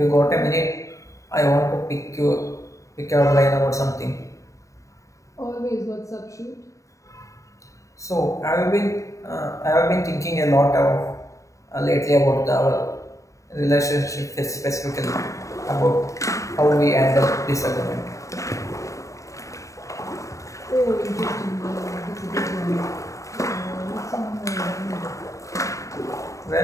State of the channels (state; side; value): late; right; 0.16 ms